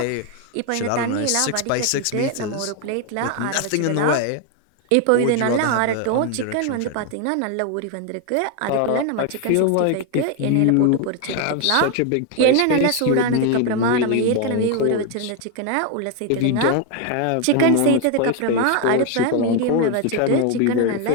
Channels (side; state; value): both; different; correlation 0.01